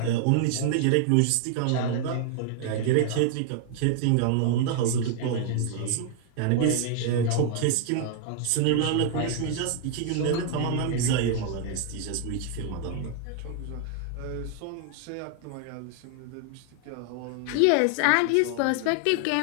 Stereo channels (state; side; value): different; both; correlation 0.00